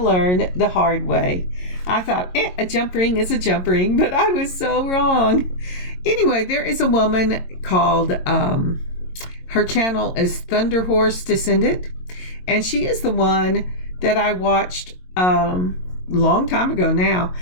the hard way. I thought, a jump ring is a jump ring, but I was so wrong. Anyway, there is a woman called, her channel is Thunder Horse Descendant, and she is the one that I watched long time ago now,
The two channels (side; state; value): right; late; 22 ms